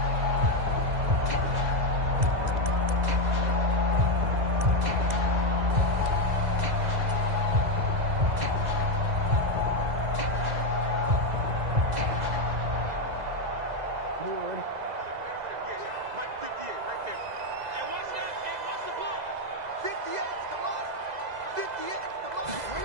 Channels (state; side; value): late; left; 2.0 ms